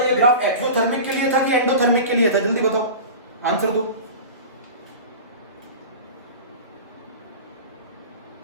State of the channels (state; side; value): inverted; both; correlation -0.33